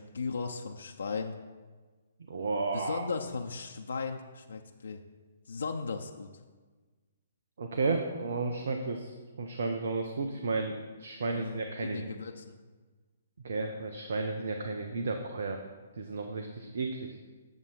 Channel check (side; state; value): both; inverted; correlation -0.74